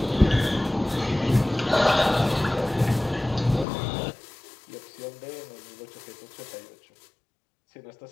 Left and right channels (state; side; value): drops out; right; at 3.7 s